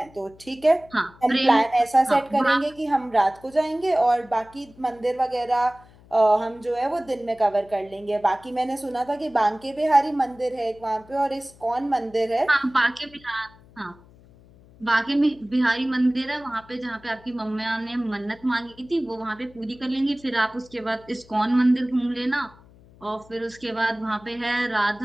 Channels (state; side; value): noise; left; hum, 25 dB below the sound